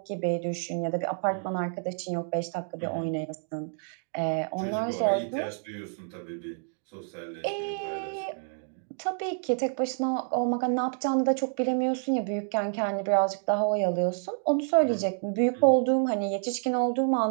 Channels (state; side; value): silent; left; digital silence